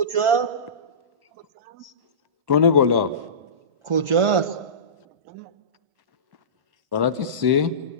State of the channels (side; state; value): left; late; 1.1 ms